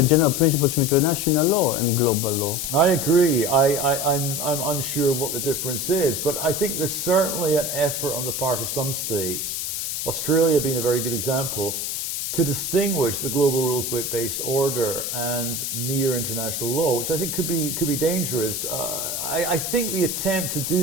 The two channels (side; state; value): left; noise; hiss, 2 dB below the sound